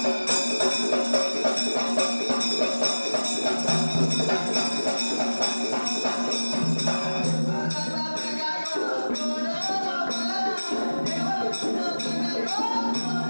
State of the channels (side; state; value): both; inverted; correlation -1.00